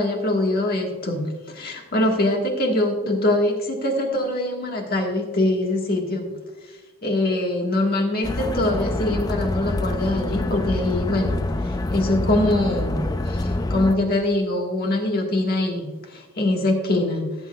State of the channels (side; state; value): both; normal; correlation 0.61